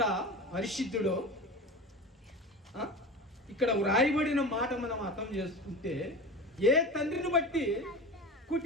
పరిశుద్ధుడో ఇక్కడ వ్రాయబడిన మాట మనం అర్థం చేసుకుంటే, ఏ తండ్రిని బట్టి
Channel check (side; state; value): both; normal; correlation 0.30